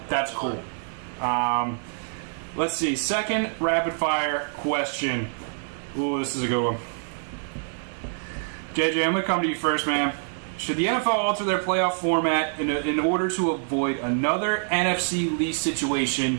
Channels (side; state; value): left; silent; digital silence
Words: that's cool. Let's see. Second rapid fire question. Ooh, this is a good one. JJ, I'm gonna come to you first, man. Should the NFL alter their playoff format in order to avoid another NFC lease